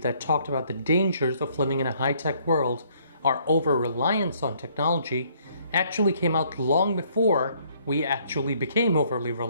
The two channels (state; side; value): inverted; both; correlation -0.64